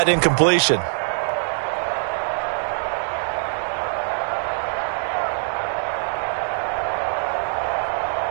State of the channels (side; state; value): left; silent; 63 dB below the other